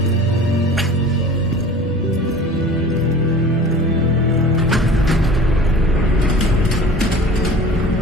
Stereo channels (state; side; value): normal; both; correlation 0.41